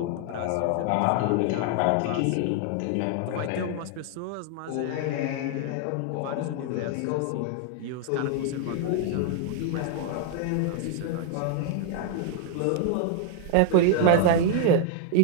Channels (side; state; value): both; different; correlation 0.00